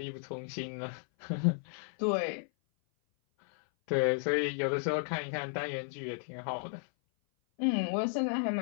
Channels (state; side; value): silent; right; 55 dB below the other